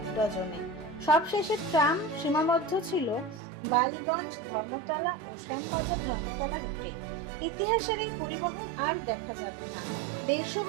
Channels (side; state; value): left; drops out; at 3.4 s